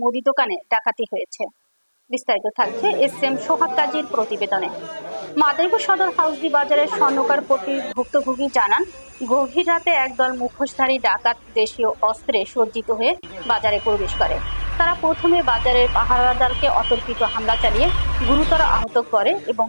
মুদি দোকানে ডাকাতি হয়েছে। বিস্তারিত থাকছে এস.এম. সোহাগ কাজীর প্রতিবেদনে। মাদারীপুর সদর হাউসি বাজারের স্বর্ণকার পট্টির ভুক্তভোগী জানান, গভীর রাতে একদল মুখোশধারী ডাকাত দেশীয় অস্ত্রে সজ্জিত হয়ে বাজারে প্রবেশ করে। তারা প্রথমে বাজারের পাহারাদারকে অতর্কিত হামলা চালিয়ে গুরুতর আহত করে এবং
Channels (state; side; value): inverted; both; correlation -1.00